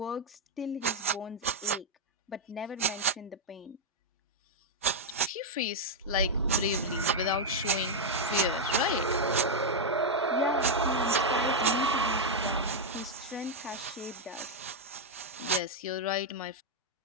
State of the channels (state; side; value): normal; both; correlation -0.01